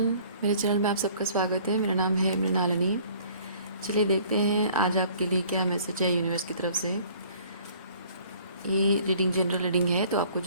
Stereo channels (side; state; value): both; inverted; correlation -0.54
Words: मेरे channel में आप सबका स्वागत है। मेरा नाम है मृणालिनी। चलिए देखते हैं आज आपके लिए क्या मैसेज है यूनिवर्स की तरफ से। ये रीडिंग जनरल रीडिंग है, तो आपको